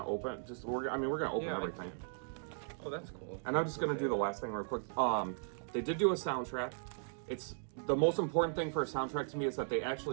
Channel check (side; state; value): left; silent; digital silence